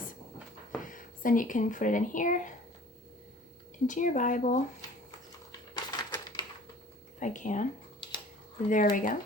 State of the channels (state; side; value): normal; both; correlation 0.48